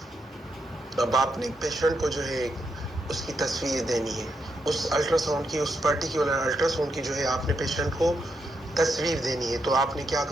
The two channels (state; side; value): normal; both; correlation 0.81